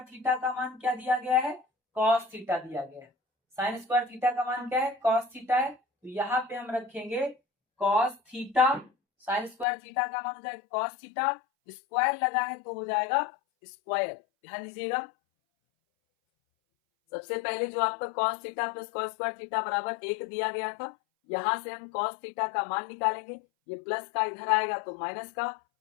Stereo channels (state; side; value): drops out; right; at 9.7 s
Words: theta का मान क्या दिया गया है कॉस थीटा दिया गया है, साइन स्क्वायर थीटा का मान क्या है कॉस थीटा है, तो यहाँ पे हम रखेंगे cos theta, sine square theta का मान हो जाएगा कॉस थीटा, स्क्वायर लगा है तो हो जाएगा स्क्वायर, ध्यान दीजिएगा। सबसे पहले जो आपका cos theta plus cos square theta बराबर 1 दिया गया था, यहां से हम cos थीटा का मान निकालेंगे, ये प्लस का इधर आएगा तो माइनस का,